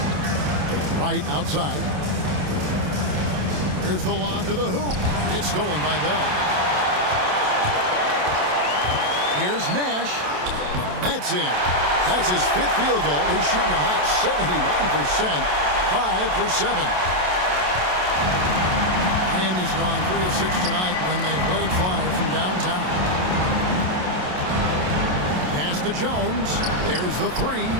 Right outside. Here's the lob to the hoop. It's stolen by Bell. Here's Nash. That's in. That's his 5th field goal. He's shooting a hot 71%. 5 for 7. Miami's gone 3 of 6 tonight when they've let it fly from downtown. Pass to Jones. There's the 3.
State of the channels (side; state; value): left; late; 27 ms